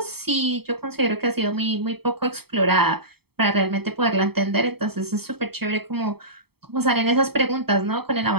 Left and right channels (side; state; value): left; late; 0.96 ms